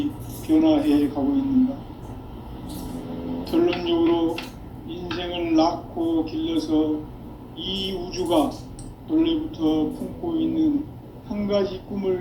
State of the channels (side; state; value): both; identical; correlation 1.00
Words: 변화해 가고 있는가? 결론적으로 인생을 낳고 길러서 이 우주가 원래부터 품고 있는 한 가지